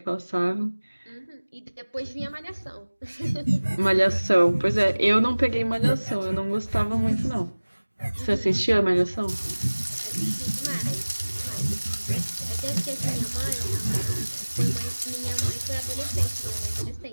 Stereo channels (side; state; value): both; inverted; correlation -1.00